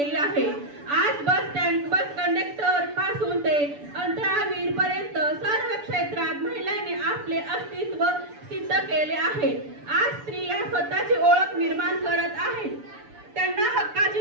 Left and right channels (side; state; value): left; late; 6.9 ms